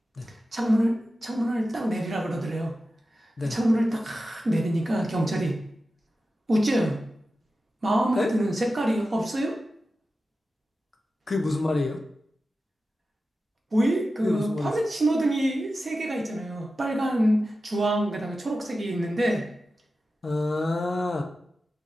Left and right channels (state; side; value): normal; both; correlation 0.93